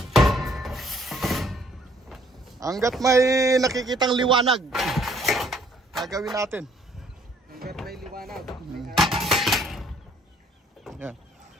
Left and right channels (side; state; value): both; normal; correlation 0.62